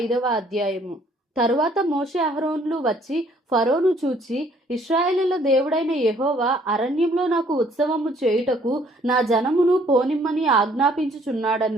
అధ్యాయము. తరువాత మోషే అహరోన్లు వచ్చి ఫరోను చూచి, ఇశ్రాయేలుల దేవుడైన యెహోవా అరణ్యంలో నాకు ఉత్సవము చేయుటకు నా జనమును పోనిమ్మని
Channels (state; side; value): normal; both; correlation 0.62